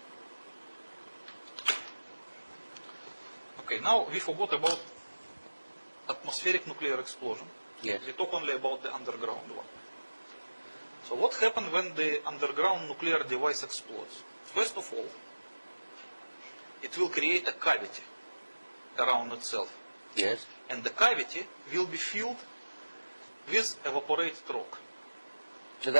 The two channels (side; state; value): both; inverted; correlation -1.00